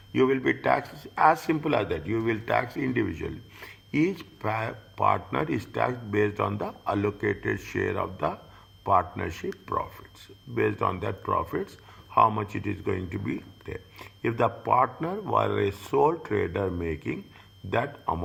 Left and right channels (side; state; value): both; identical; correlation 1.00